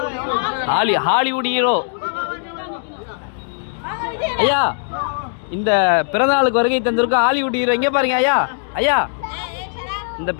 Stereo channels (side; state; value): right; silent; digital silence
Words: Hollywood hero. ஐயா, இந்த பிறந்தநாளுக்கு வருகை தந்திருக்கோம் ஹாலிவுட் ஹீரோ. இங்கே பாருங்க ஐயா. ஐயா, இந்த